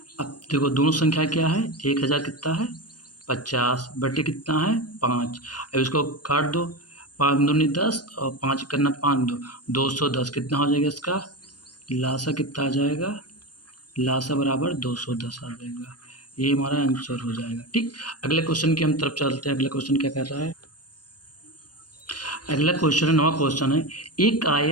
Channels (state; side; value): late; right; 0.69 ms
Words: अब देखो दोनों संख्या क्या है 1000 कितना है 50 बट्टे कितना है 5। अब इसको काट दो 5 दूनी 10 और 5 करना 5 210 कितना हो जाएगा इसका लासा कितना आ जाएगा लासा बराबर 210 आ जाएगा। ये हमारा आंसर हो जाएगा। ठीक, अगले क्वेश्चन की हम तरफ चलते हैं। अगला क्वेश्चन क्या कर रहा है अगला क्वेश्चन है, नवा क्वेश्चन है। एक